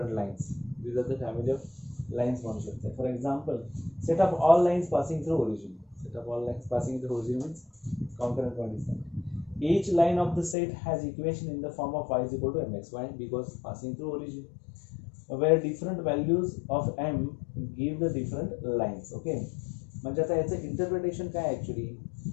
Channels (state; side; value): drops out; right; at 10.6 s